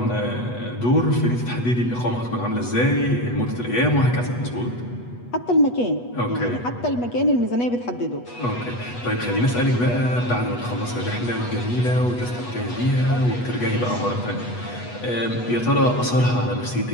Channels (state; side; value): late; right; 8.2 ms